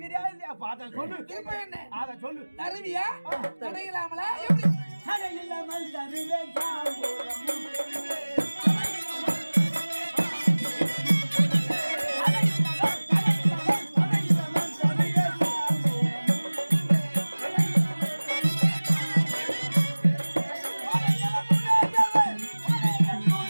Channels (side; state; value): both; inverted; correlation -1.00